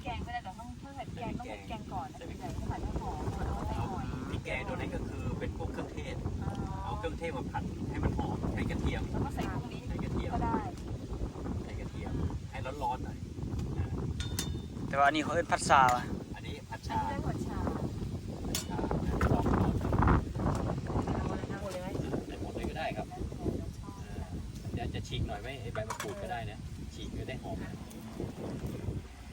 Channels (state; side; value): identical; both; correlation 1.00